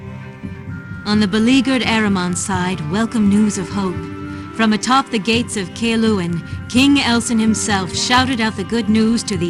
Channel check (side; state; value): both; identical; correlation 1.00